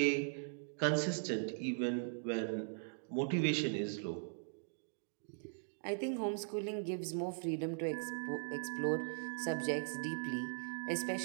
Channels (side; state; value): left; silent; digital silence